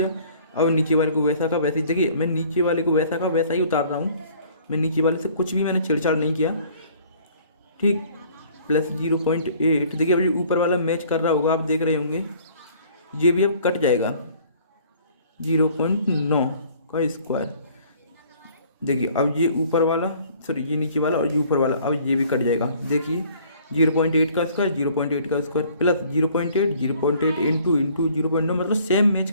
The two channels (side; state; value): both; inverted; correlation -0.55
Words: अब नीचे वाले को वैसा का वैसे ही, देखिए मैं नीचे वाले को वैसा का वैसा ही उतार रहा हूँ, मैं नीचे वाले से कुछ भी मैंने छेड़छाड़ नहीं किया, ठीक। प्लस 0.8, देखिए अब ये ऊपर वाला मैच कर रहा होगा, आप देख रहे होंगे, ये भी अब कट जाएगा 0.9 का स्क्वायर। देखिए अब ये ऊपर वाला, सॉरी ये नीचे वाला और ये ऊपर वाला, अब ये भी कट जाएगा। देखिए 0.8 का स्क्वायर, 0.8 का स्क्वायर प्लस 0.8, 0.8 इंटू 0.9, मतलब सेम मैच